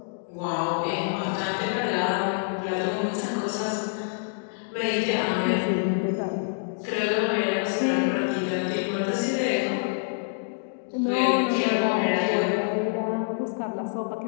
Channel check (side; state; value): right; silent; digital silence